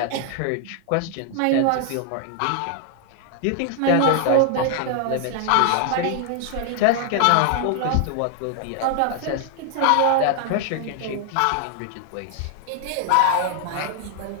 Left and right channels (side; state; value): both; different; correlation 0.00